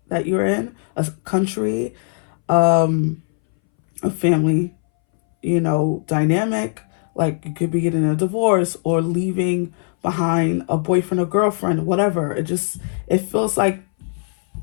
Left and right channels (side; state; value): right; silent; 63 dB below the other